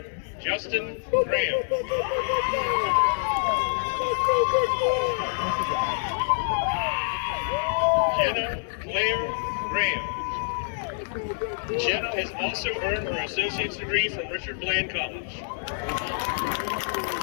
Justin Graham. Jenna Claire Graham. Jenna has also earned her associate's degree from Richard Bland College.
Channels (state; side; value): silent; right; 61 dB below the other